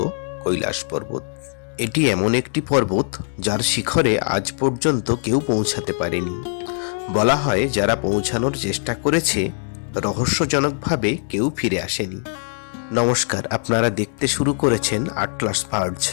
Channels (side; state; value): right; silent; 65 dB below the other